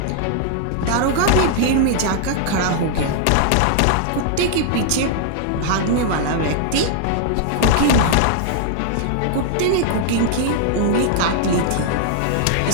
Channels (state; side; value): different; both; correlation -0.01